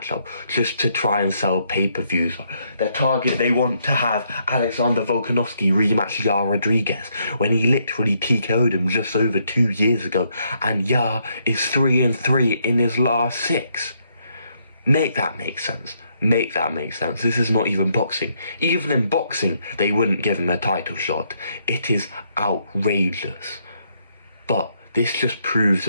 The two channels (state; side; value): inverted; both; correlation -0.74